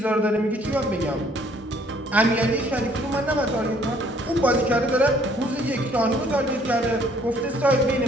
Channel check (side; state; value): both; normal; correlation 0.62